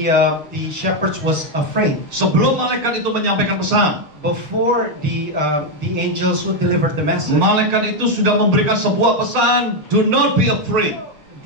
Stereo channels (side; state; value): left; late; 6.5 ms